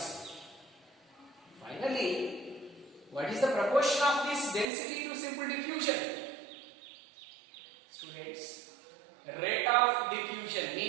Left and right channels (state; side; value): drops out; left; at 4.7 s